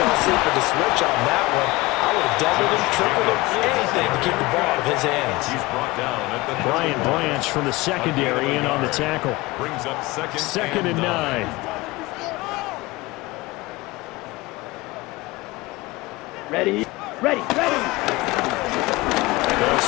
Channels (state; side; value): quieter; right; 21.3 dB